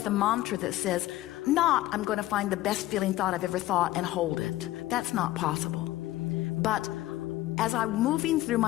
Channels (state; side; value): quieter; right; 16.0 dB